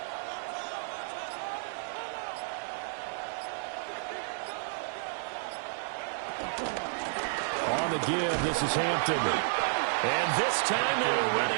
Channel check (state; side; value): silent; left; 57 dB below the other